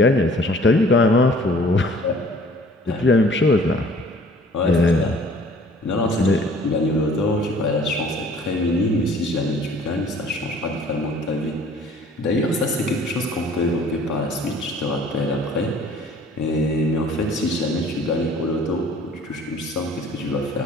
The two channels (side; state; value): both; normal; correlation 0.52